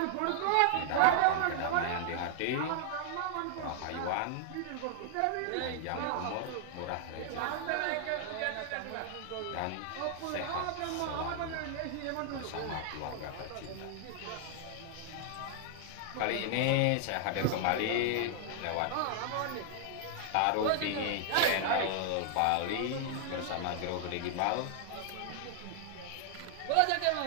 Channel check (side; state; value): both; different; correlation 0.00